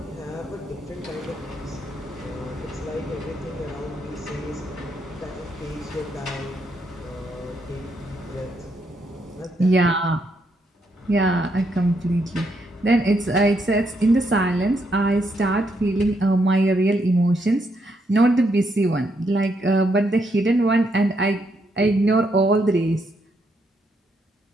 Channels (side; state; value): both; normal; correlation 0.77